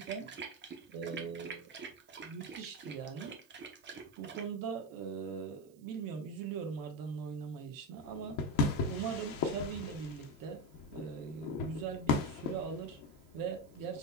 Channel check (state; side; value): noise; right; hiss, 29 dB below the sound